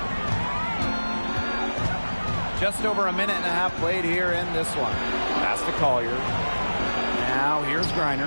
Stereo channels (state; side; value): inverted; both; correlation -1.00